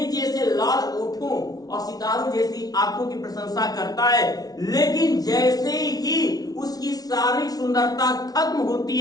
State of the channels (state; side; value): late; right; 0.19 ms